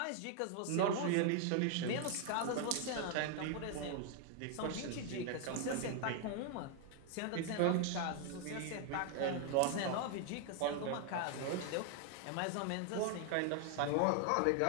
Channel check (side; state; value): both; different; correlation 0.00